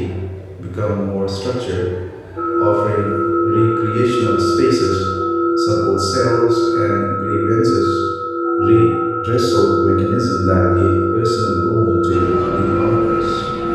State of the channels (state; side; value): identical; both; correlation 1.00